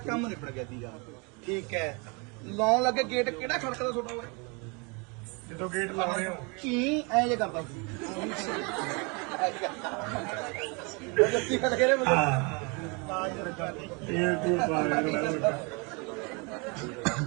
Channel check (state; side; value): quieter; left; 31.5 dB